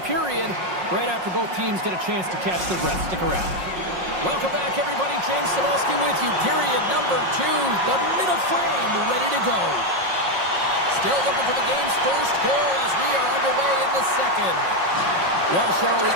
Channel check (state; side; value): late; left; 5.5 ms